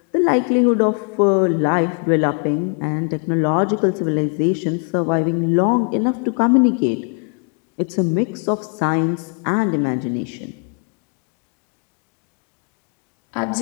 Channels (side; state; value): right; quieter; 39.4 dB